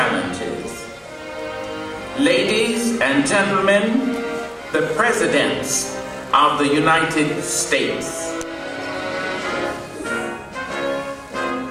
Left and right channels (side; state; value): both; identical; correlation 1.00